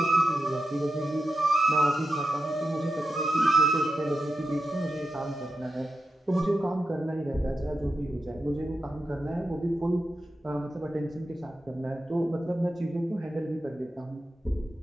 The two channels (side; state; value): both; normal; correlation 0.89